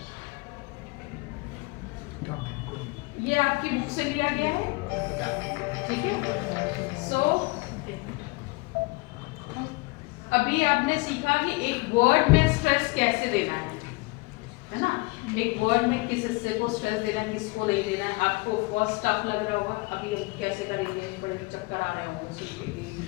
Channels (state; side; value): quieter; right; 25.5 dB